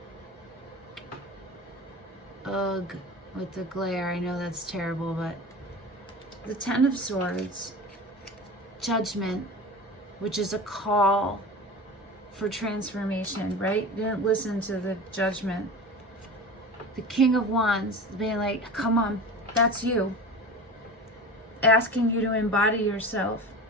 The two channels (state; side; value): normal; both; correlation 0.33